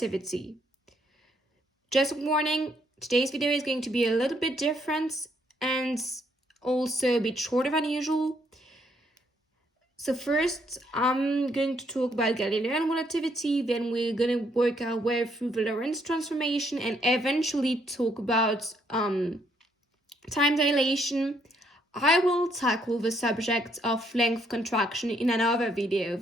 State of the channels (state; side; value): normal; both; correlation 0.71